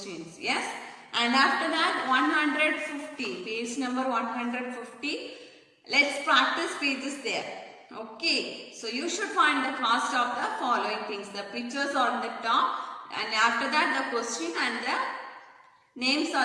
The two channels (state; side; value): identical; both; correlation 1.00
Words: Yes? And after that, 150, page number 150. Let's practice pages there. Okay, so you should find the cost of the following things. The pictures are on the top, and after that the question and the Names are